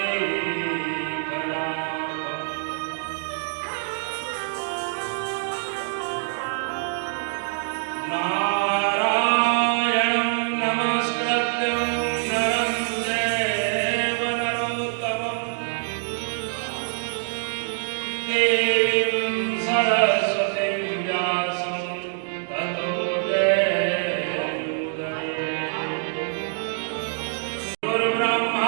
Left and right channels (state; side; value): silent; left; digital silence